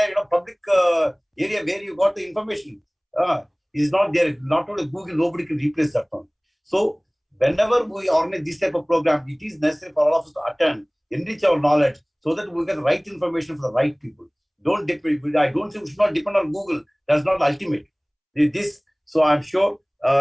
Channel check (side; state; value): both; identical; correlation 1.00